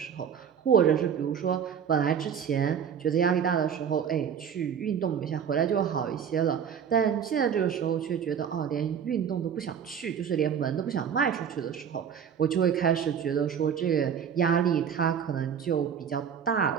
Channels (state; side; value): quieter; left; 7.9 dB